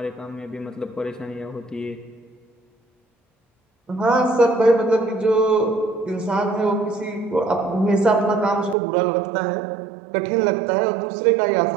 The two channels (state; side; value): drops out; left; at 8.8 s